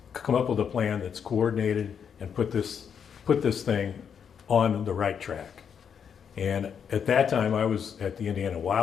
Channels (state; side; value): quieter; right; 7.4 dB